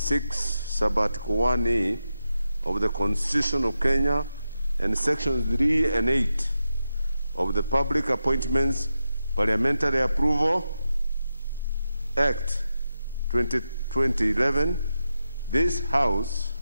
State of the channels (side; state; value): both; inverted; correlation -0.89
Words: Sub-Article 1A of the Constitution of Kenya and Sections 3 and 8 of the Public Appointments Parliamentary Approval Act 2011, this House